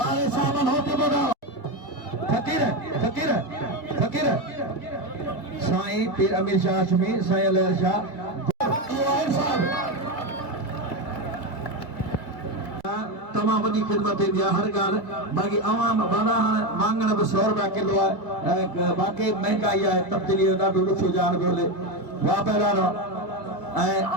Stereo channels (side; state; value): right; late; 2.1 ms